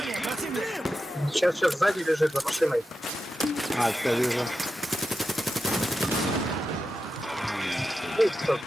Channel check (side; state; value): both; normal; correlation 0.90